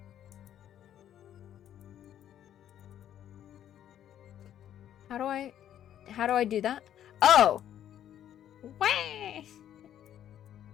How do I do that? Oh! Way!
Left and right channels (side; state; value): right; quieter; 10.7 dB